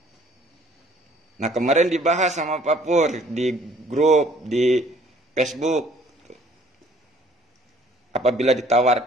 Nah kemarin dibahas sama Pak Pur di grup, di Facebook. Apabila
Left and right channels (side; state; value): both; normal; correlation 0.58